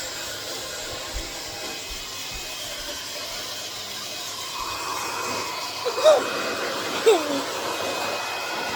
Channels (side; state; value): both; identical; correlation 1.00